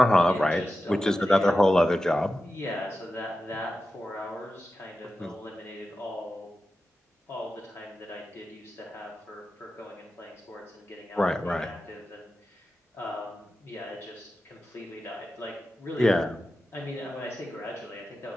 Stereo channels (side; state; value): both; normal; correlation 0.92